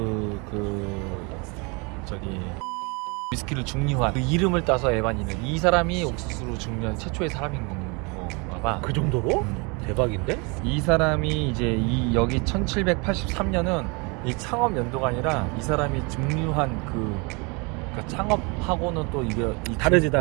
저기 위스키를 증류한 그 이름을 따서 에반이는, 이 사람이 옥수수로 증류한 최초의 사람인 건가 봐. 그 정도로? 대박인데? 이 사람이 이제 여기 1783년은 이 창업 연도가 아니라 이 사람이 증류한 그러니까 창업하고는 또 이게 다르지.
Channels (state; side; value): quieter; left; 30.3 dB